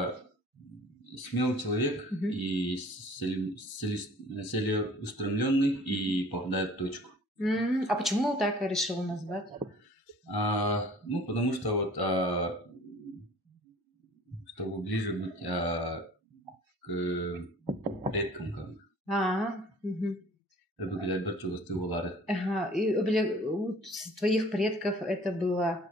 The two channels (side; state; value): both; normal; correlation 0.50